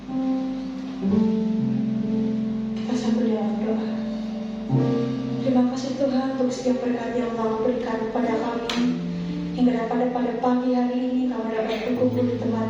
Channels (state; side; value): identical; both; correlation 1.00